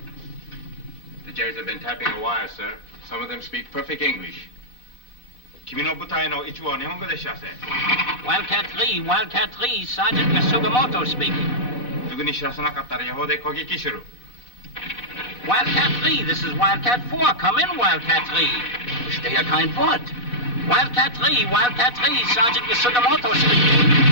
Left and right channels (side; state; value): right; late; 4.1 ms